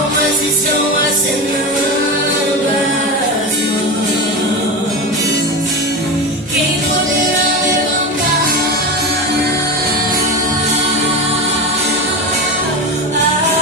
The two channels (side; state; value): both; normal; correlation 0.21